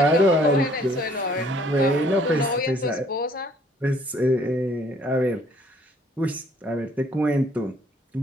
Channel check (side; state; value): both; normal; correlation 0.61